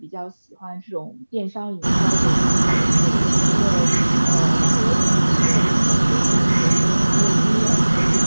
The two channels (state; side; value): inverted; both; correlation -1.00